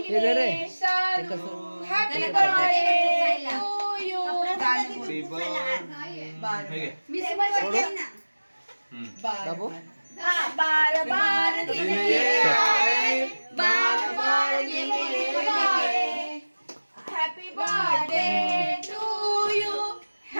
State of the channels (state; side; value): inverted; both; correlation -1.00